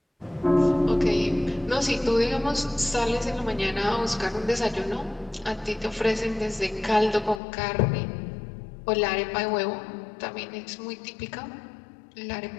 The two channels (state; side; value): drops out; right; at 7.4 s